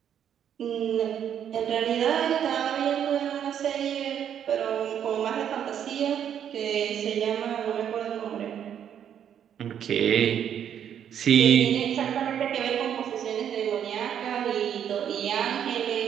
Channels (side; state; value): left; quieter; 9.2 dB